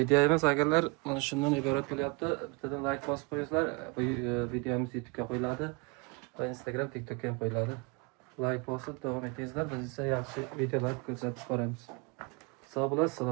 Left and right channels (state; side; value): quieter; left; 29.2 dB